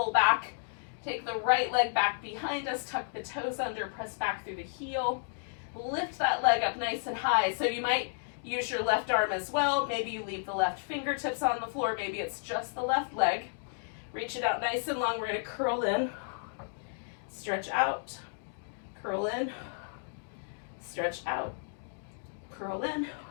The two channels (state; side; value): silent; right; digital silence